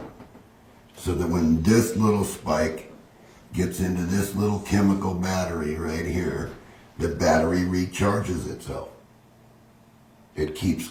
So that when this little spike gets into this little chemical battery right here, the battery recharges itself. It keeps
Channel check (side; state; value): both; identical; correlation 1.00